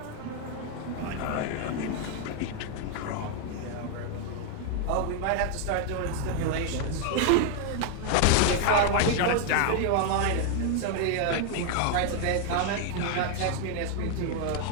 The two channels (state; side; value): different; both; correlation 0.00